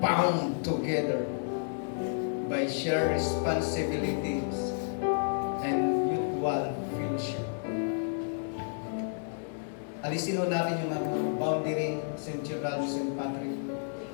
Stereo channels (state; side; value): silent; right; digital silence